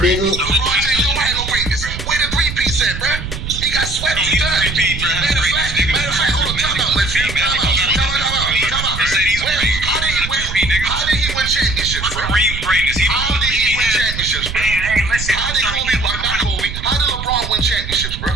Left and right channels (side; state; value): right; noise; rumble, 7 dB below the sound